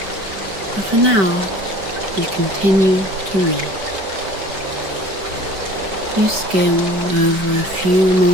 But for now, you continue to read. You skim over a few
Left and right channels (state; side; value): late; left; 5.2 ms